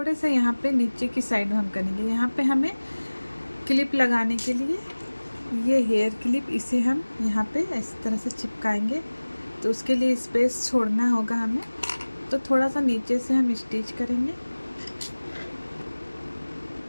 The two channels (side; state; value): both; inverted; correlation -1.00